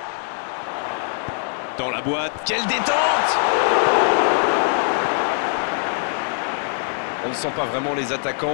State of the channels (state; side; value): silent; right; digital silence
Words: Dans la boîte. Quelle détente! On ne sent pas vraiment les